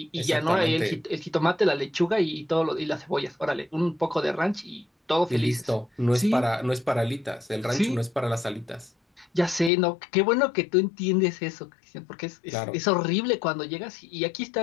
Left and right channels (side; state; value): right; drops out; at 9.7 s